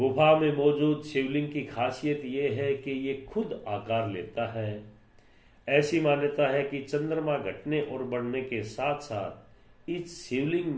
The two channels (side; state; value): both; identical; correlation 1.00